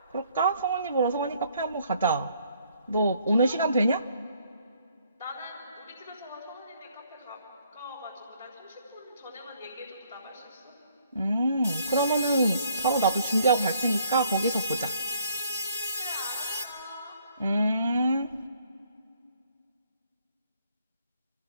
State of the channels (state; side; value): inverted; both; correlation -0.65